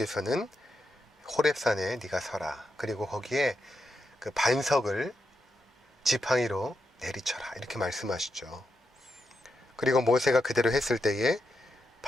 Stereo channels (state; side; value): normal; both; correlation 0.85